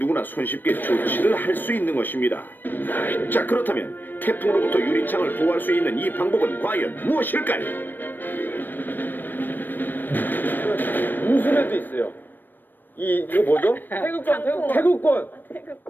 손쉽게 조치를 할 수 있는 것입니다. 자, 그렇다면 태풍으로부터 유리창을 보호할 수 있는 이 방법은 과연 무엇일까요? 무술에도 있어요. 이거 뭐죠? 태극권.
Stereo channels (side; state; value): right; late; 0.092 ms